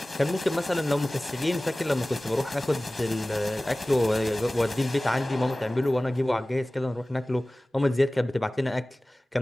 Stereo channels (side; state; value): both; normal; correlation 0.98